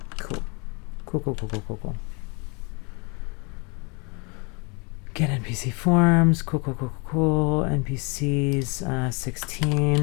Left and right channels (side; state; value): right; quieter; 31.3 dB